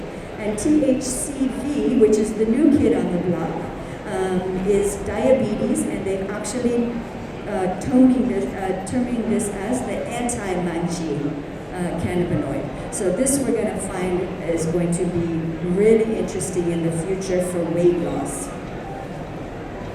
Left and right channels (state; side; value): identical; both; correlation 1.00